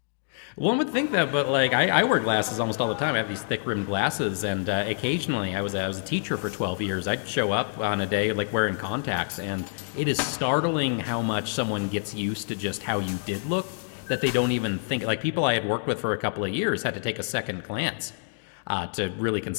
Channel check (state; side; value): silent; right; digital silence